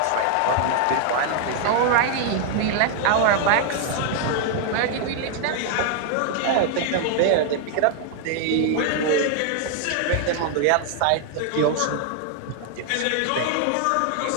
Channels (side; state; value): both; different; correlation 0.00